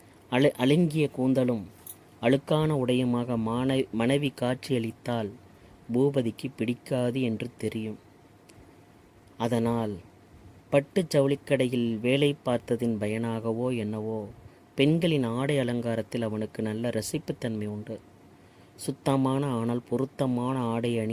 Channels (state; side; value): identical; both; correlation 1.00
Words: அழுங்கிய கூந்தலும் அழுக்கான உடையுமாக மனைவி காட்சியளித்தால் பூபதிக்கு பிடிக்காது என்று தெரியும். அதனால் பட்டு ஜவுளிக்கடையில் வேலை பார்த்ததின் பயனாகவோ என்னவோ பெண்களின் ஆடை அலங்காரத்தில் அவனுக்கு நல்ல ரசிப்புத்தன்மை உண்டு. சுத்தமான ஆனால் பொருத்தமான ஆடை